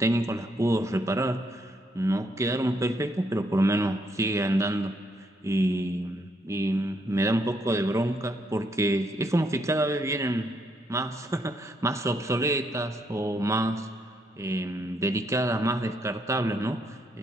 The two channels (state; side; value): normal; both; correlation 0.74